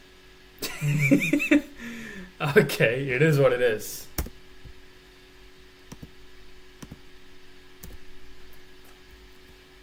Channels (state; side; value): identical; both; correlation 1.00